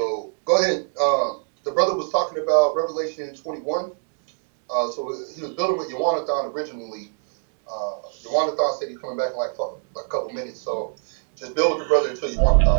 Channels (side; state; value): left; silent; 59 dB below the other